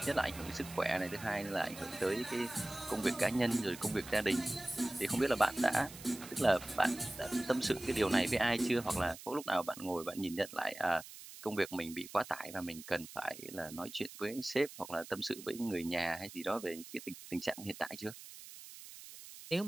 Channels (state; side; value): noise; right; hiss, 15 dB below the sound